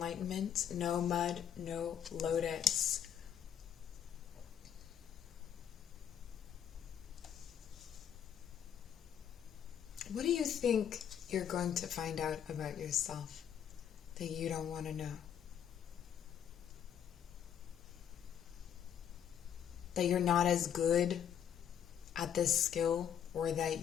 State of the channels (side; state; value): right; quieter; 9.0 dB